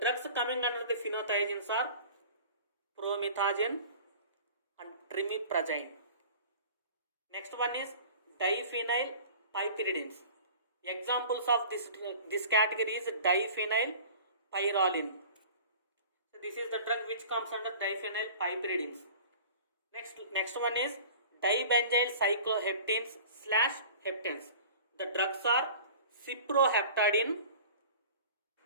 drugs coming under the phenothiazines are promethazine and trimiprazine. Next one is diphenyl piperidines. Examples of this category is diphenyl pyrroline. So this is the drug which comes under diphenyl piperidines. Next one is dibenzyl cycloheptenes / heptanes. The drugs are cyproheptadine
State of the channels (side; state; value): both; inverted; correlation -0.42